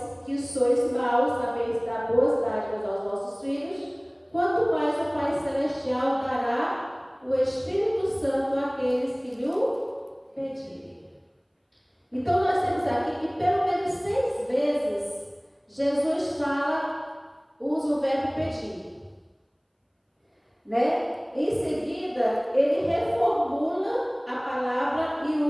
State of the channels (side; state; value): both; identical; correlation 1.00